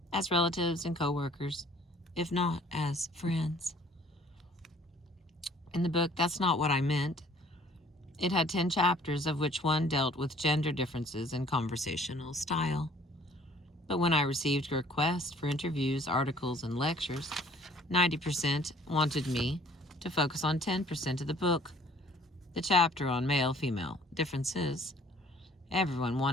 as relatives and co-workers, if not as friends. In the book, That's Not What I Meant, it had 10 chapters, of which one dealt with gender differences in conversational style. But when I received requests for interviews, articles, and lectures, 90% wanted me to focus on 10% of the book, the chapter on male-female differences. Everyone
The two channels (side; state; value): both; normal; correlation 0.56